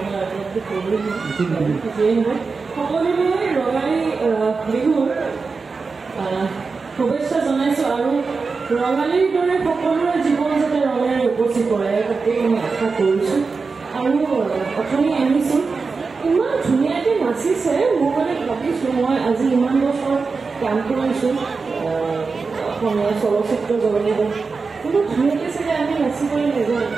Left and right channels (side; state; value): left; quieter; 4.5 dB